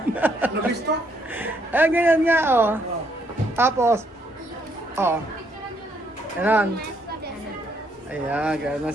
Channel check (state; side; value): normal; both; correlation 0.71